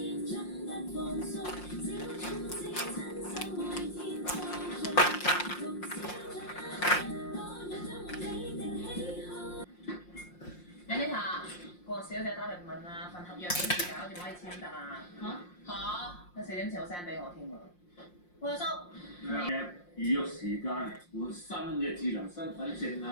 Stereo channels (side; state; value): right; late; 5.6 ms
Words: Anita，個小姐打嚟問啊，份合約幾時搞掂可以簽得啊？有4點前我 send 俾我添喎。喂，阿叔。預約時間換新嘅智能身份證